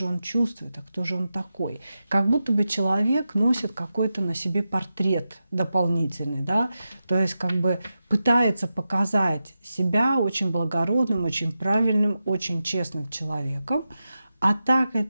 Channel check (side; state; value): both; inverted; correlation -0.91